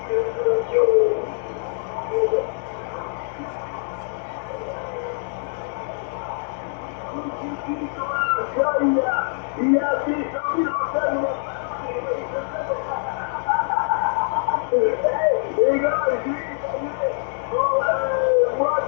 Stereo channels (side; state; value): right; silent; 63 dB below the other